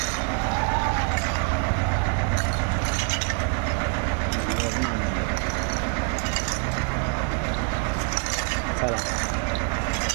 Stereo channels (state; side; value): quieter; left; 40.0 dB